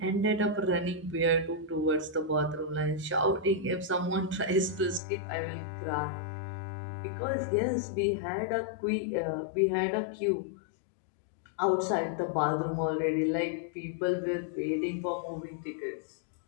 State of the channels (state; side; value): drops out; right; at 5.0 s